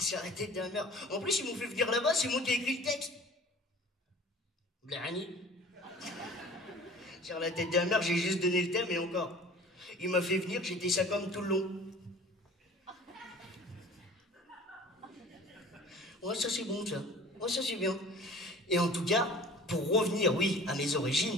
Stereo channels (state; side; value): normal; both; correlation 0.45